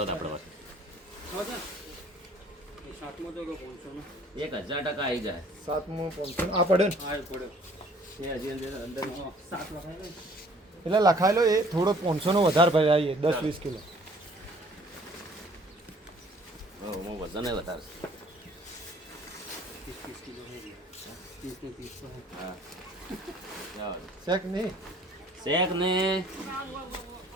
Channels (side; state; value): both; normal; correlation 0.56